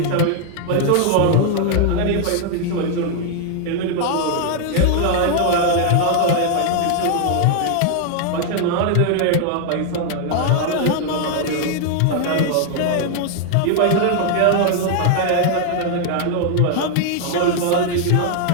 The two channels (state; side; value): different; both; correlation 0.00